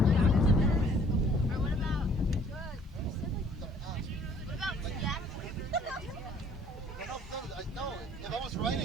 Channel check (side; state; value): both; normal; correlation 0.57